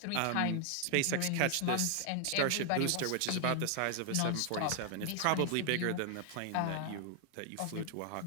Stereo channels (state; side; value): different; both; correlation 0.00